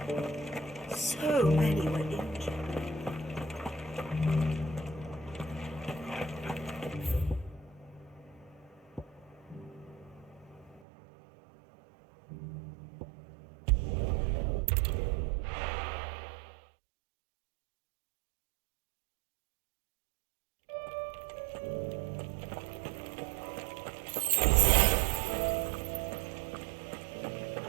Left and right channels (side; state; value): left; drops out; at 10.8 s